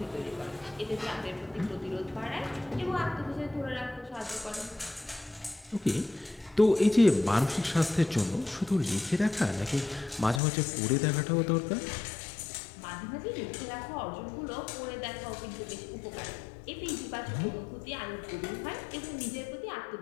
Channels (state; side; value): drops out; right; at 10.4 s